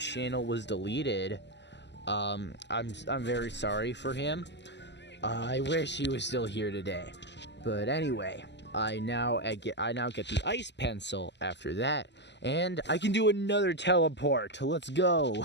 was deleted. I'm very sorry for him. I wish he was still here today. But anyway, I now get the ice pencil after that, and I can do another teleport. Let's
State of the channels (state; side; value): late; right; 0.51 ms